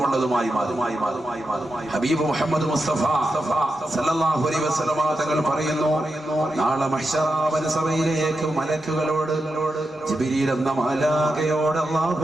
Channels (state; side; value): normal; both; correlation 0.88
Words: ഉള്ളതുമായി മാറി. ഹബീബ് മുഹമ്മദ് മുസ്തഫ സല്ലല്ലാഹു അലൈഹി വസല്ലം തങ്ങൾ പറയുന്നു, നാളെ മഹ്ശറ സഭയിലേക്ക് മലക്കുകളോട്, ജിബ്രീൽ എന്ന മാലാഖയോട് അല്ലാഹു